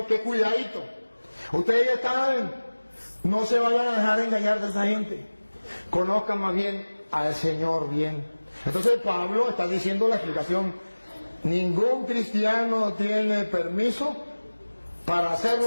que cuidadito. Ustedes ya saben, no se vayan a dejar engañar de esa gente. Conozcan más bien al Señor bien. Entonces Pablo está diciendo la explicación. Ningún cristiano tiene permiso para hacer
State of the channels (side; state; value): both; inverted; correlation -1.00